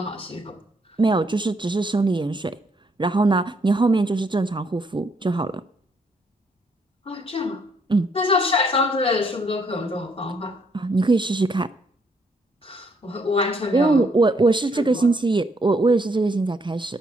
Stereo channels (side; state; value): both; normal; correlation 0.71